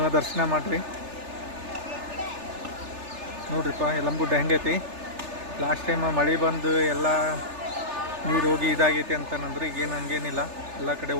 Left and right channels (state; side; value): late; left; 3.4 ms